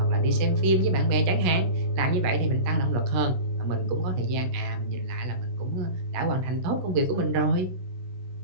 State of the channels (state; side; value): late; left; 16 ms